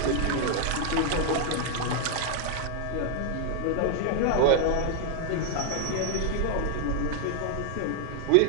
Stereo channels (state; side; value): different; both; correlation 0.00